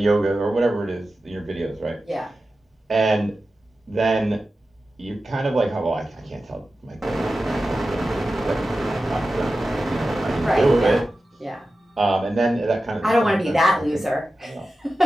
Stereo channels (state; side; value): normal; both; correlation 0.93